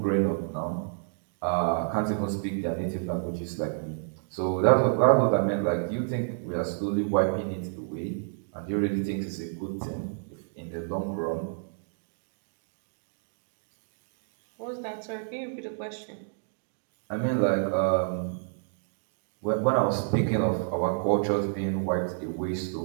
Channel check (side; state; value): left; silent; digital silence